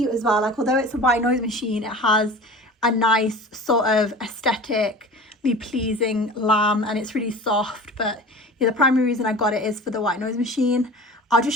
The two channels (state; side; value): normal; both; correlation 0.37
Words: as well. Like, although it's a white noise machine, it has a nice sort of aesthetically pleasing lamp, and it's really soft. But yeah, the primary reason I got it is for the white noise machine. I'll